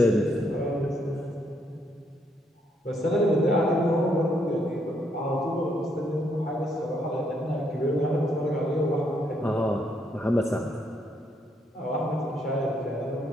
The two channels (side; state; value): both; normal; correlation 0.73